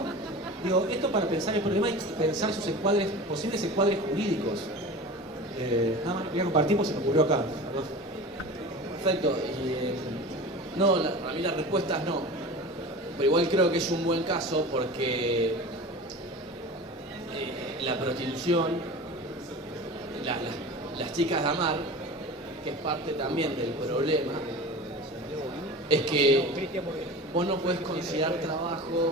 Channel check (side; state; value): both; normal; correlation 0.34